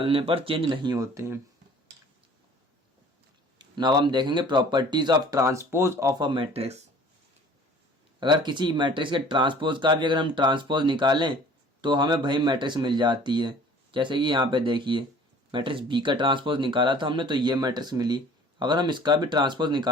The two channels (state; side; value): normal; both; correlation 0.49